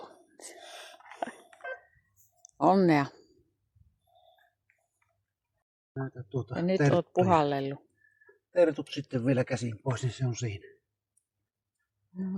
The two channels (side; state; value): both; identical; correlation 1.00